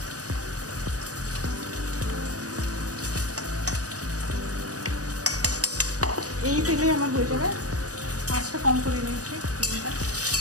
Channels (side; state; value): left; late; 0.67 ms